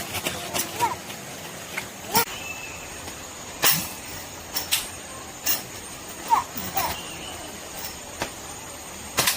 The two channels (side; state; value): both; identical; correlation 1.00